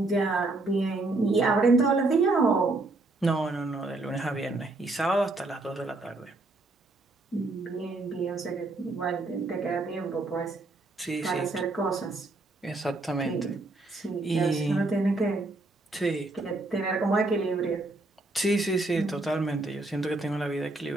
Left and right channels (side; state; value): left; quieter; 3.0 dB